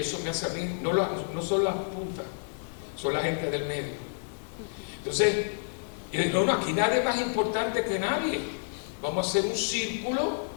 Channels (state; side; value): silent; right; digital silence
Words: Eso me hace a mí, no son las puntas, son la gente del medio. Entonces, yo digo, no, aquí nadie es más importante que nadie. Vamos a hacer un círculo